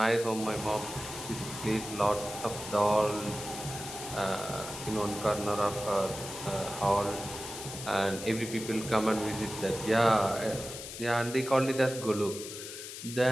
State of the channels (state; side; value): noise; left; hiss, 10 dB below the sound